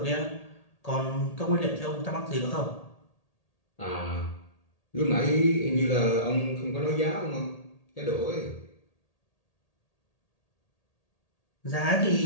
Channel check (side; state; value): right; late; 1.8 ms